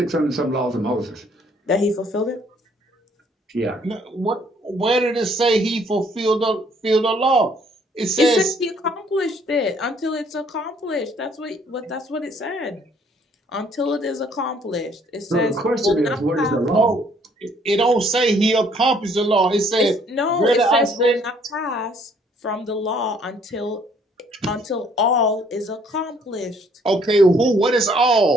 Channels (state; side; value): normal; both; correlation 0.63